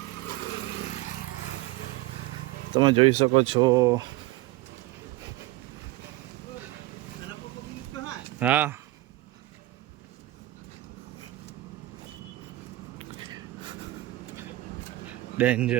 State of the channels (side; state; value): left; quieter; 17.4 dB